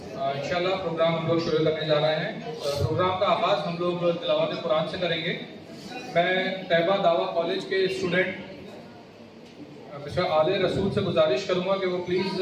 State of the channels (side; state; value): both; identical; correlation 1.00